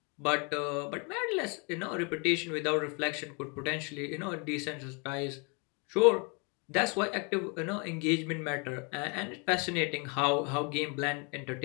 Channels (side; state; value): right; quieter; 33.2 dB